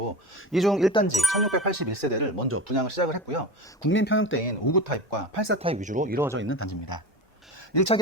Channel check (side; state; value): both; normal; correlation 0.28